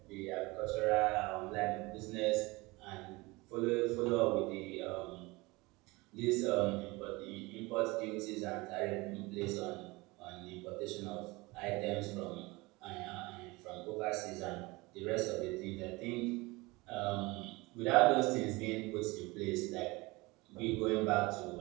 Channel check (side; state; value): left; quieter; 23.3 dB